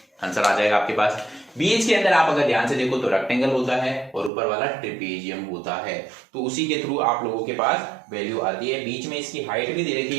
आंसर आ जाएगा आपके पास। बीच के अंदर आप अगर ध्यान से देखो तो रेक्टेंगल होता है और ऊपर वाला ट्रेपेजियम होता है, तो उसी के थ्रू आप लोगों के पास वैल्यू आती है। बीच में इसकी हाइट भी दे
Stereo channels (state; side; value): drops out; left; at 4.3 s